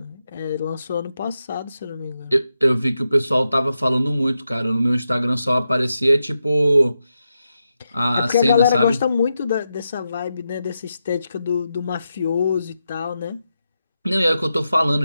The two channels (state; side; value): inverted; both; correlation -0.87